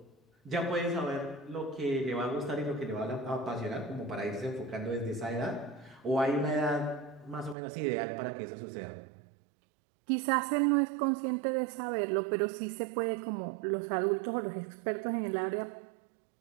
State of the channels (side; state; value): left; drops out; at 7.6 s